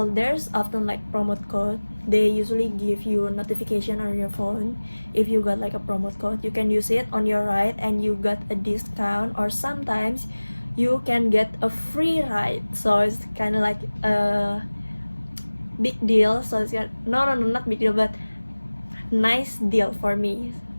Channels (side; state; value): both; inverted; correlation -1.00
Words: there's often like promote code. They usually give you a notification on your phone. If you got like a promote code, you can use it on your ride and you got a discount, or sometimes you can get a free ride. So it's kind of like a big deal. So it's not big deal, but nice deal for me.